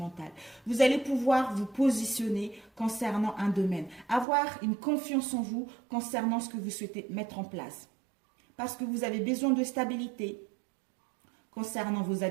Vous allez pouvoir vous positionner concernant un domaine, avoir une confiance en vous concernant ce que vous souhaitez mettre en place. Parce que vous avez besoin de stabilité concernant vos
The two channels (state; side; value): drops out; left; at 4.2 s